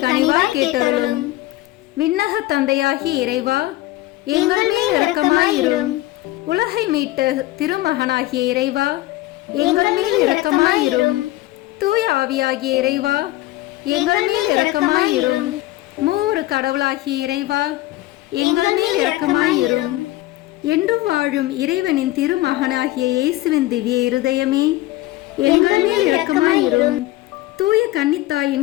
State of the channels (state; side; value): quieter; right; 17.3 dB